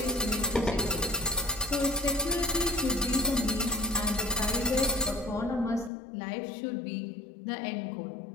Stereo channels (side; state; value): right; drops out; at 5.9 s